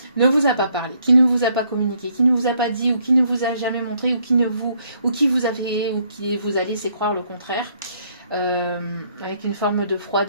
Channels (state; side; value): inverted; both; correlation -0.68